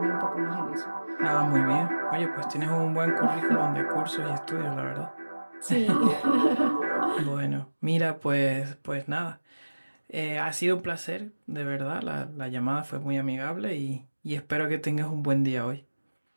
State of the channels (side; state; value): both; inverted; correlation -1.00